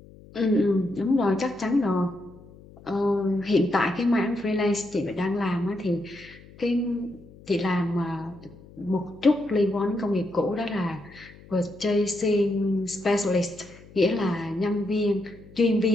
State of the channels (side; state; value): left; noise; hum, 22 dB below the sound